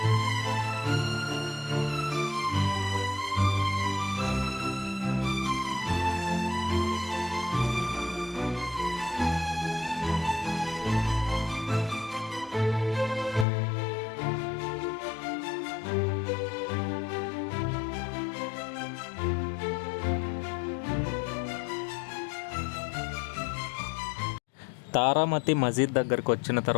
తారామతి మసీద్ దగ్గరికి వచ్చిన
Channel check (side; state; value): right; drops out; at 13.5 s